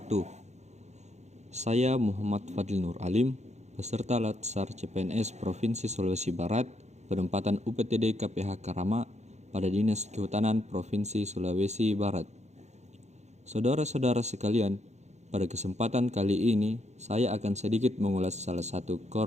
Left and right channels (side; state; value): left; late; 0.33 ms